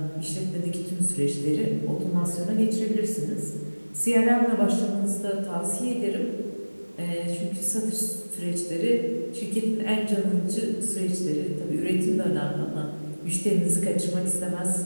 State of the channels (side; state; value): both; inverted; correlation -1.00